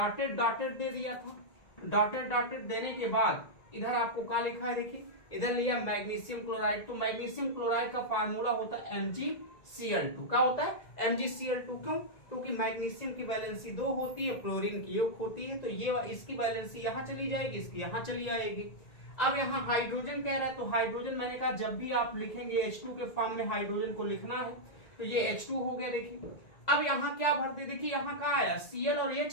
डॉटेड दे दिया था। डॉटेड डॉटेड देने के बाद इधर आपको क्या लिखा है, देखिए इधर लिया मैग्नीशियम क्लोराइड। तो मैग्नीशियम क्लोराइड का फार्मूला होता है MgCl2। क्या होता है MgCl2, क्यों, क्योंकि मैग्नीशियम की वैलेंसी 2 होती है, क्लोरीन की 1 होती है, तो ये इसकी वैलेंसी यहाँ चली जाएगी, इसकी यहाँ चली आएगी। अब यहाँ हाइड्रोजन कह रहा है, तो हाइड्रोजन मैंने कहा जब भी आप लिखेंगे H2 के फॉर्म में हाइड्रोजन को लिखना है, तो ये H2 हो गया। देखिए अब यहाँ क्या भर दे, देखिए यहाँ क्या आया, Cl और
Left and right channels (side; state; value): right; late; 1.9 ms